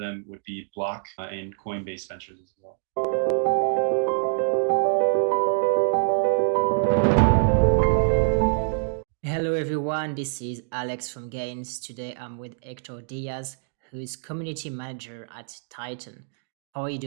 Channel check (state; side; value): silent; left; digital silence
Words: would be Block and Coinbase Ventures as well. Hello everyone, this is Alex from Gains. Today I'm with Hector Diaz, who is community manager at Titan. How are you